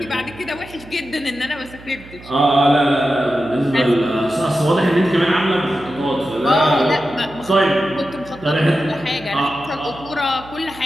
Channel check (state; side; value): noise; right; hum, 19 dB below the sound